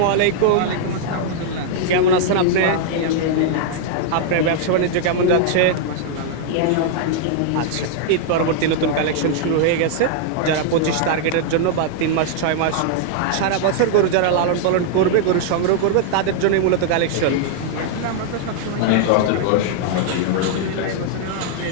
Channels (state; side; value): different; both; correlation 0.00